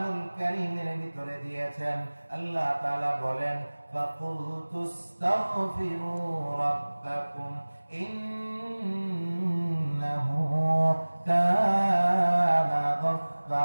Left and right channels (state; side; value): inverted; both; correlation -1.00